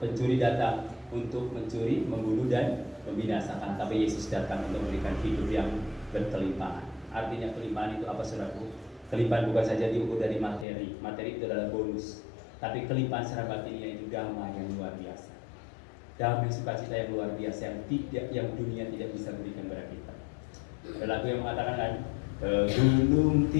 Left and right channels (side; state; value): right; drops out; at 10.7 s